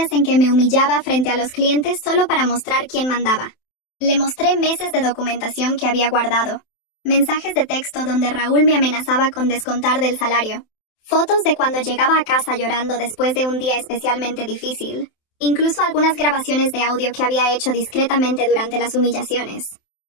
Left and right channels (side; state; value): right; late; 27 ms